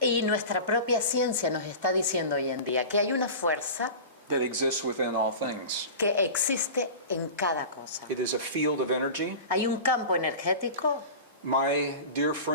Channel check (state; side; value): inverted; both; correlation -0.32